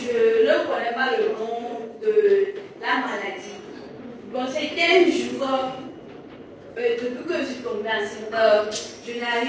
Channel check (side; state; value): both; identical; correlation 1.00